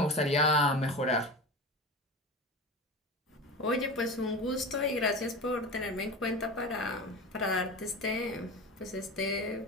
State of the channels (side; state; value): both; normal; correlation 0.28